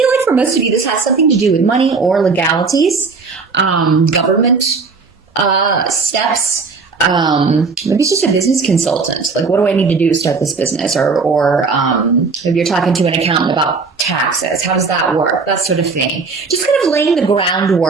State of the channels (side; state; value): left; quieter; 4.6 dB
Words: like for most of you, this has something to do with money or legalities, government steps. Maybe it's just a business consultant. Like, what do I need to do to start this business? Or if you're talking to an accountant about taxes, how does that work? That sort of thing. Just kind of laying the